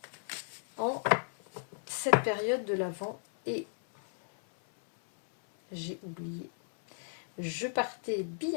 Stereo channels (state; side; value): silent; right; 55 dB below the other